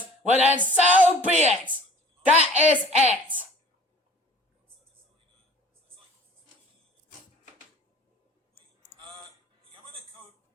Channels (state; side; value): normal; both; correlation 0.47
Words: well then so be it. That is it. Yamanaka